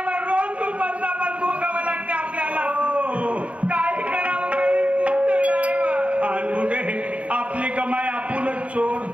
रोज दुपारचा भोगावं लागते आपल्याला. काय करावं आणि पुढे आपली कमाई आपणच चोर.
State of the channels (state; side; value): late; left; 0.065 ms